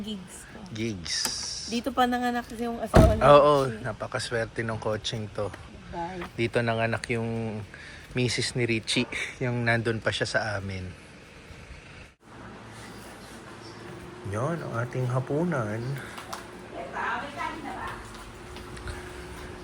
ko. Gigs. Dito pa nanganak kasi yung asawa niya. Oo, napakaswerte ng coaching to. Bye. Dito nanganak yung misis ni Richie, yung nandun pa siya sa amin. Yon ang ating hapunan.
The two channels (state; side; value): identical; both; correlation 1.00